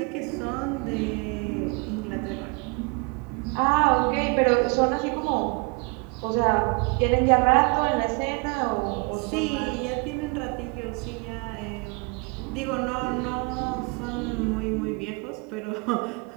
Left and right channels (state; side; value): quieter; left; 31.4 dB